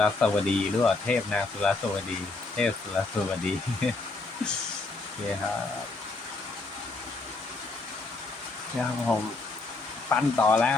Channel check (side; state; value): right; quieter; 3.5 dB